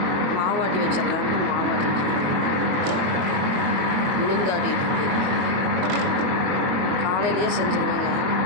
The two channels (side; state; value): left; late; 22 ms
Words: மாவாட்டி வச்சிடலான்ட்டு மாவாட்டி உளுந்தாட்டிட்டு இருக்கு. காலையிலேயே செஞ்சுருவேங்க.